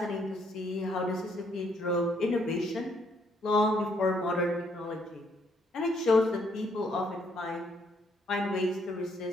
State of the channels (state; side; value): normal; both; correlation 0.70